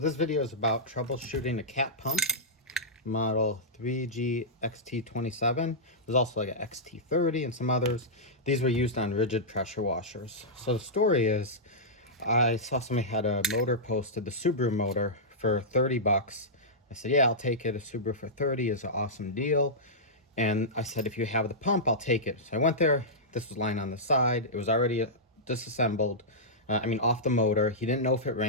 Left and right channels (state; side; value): normal; both; correlation -0.13